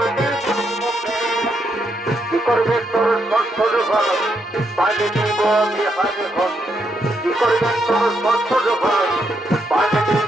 কি করবে তোর সচ্ছর ঘর পানি দিব বিহার ঘর কি করবে তোর সচ্ছর ঘর পানি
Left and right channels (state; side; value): normal; both; correlation 0.78